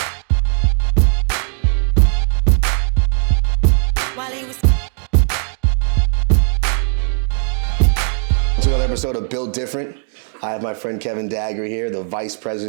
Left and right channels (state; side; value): silent; left; 68 dB below the other